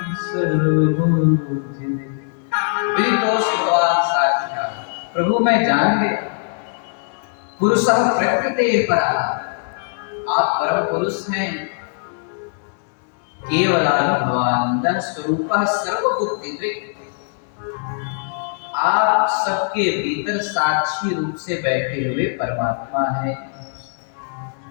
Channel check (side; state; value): right; silent; digital silence